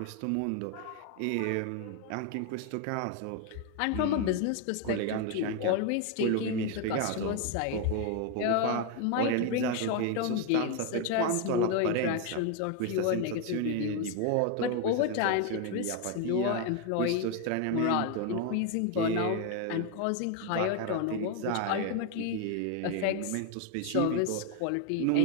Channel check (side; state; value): both; different; correlation 0.01